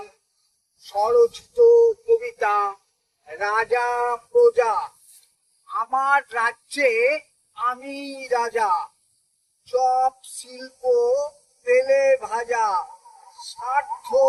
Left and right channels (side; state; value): both; identical; correlation 1.00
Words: স্বরচিত কবিতা রাজা প্রজা। আমার রাজ্যে আমি রাজা, চপ শিল্প তেলে ভাজা, স্বার্থ